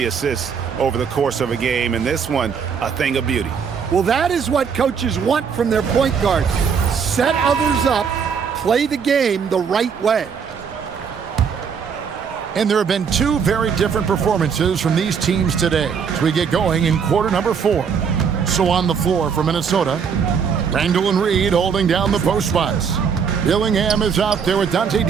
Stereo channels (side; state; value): left; quieter; 6.6 dB